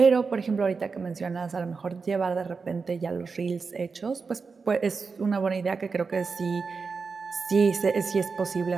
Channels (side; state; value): left; quieter; 4.8 dB